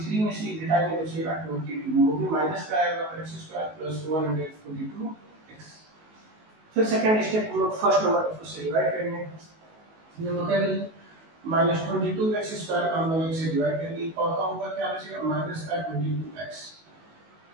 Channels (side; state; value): left; late; 19 ms